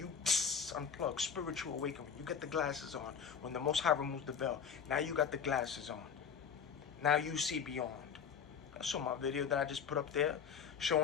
unplug, spiritual awakening. You get the glasses on. When the Most High removes the veil. Now you got the glasses on. Now you see beyond. I saw my video that I just put up there,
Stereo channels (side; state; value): right; quieter; 7.1 dB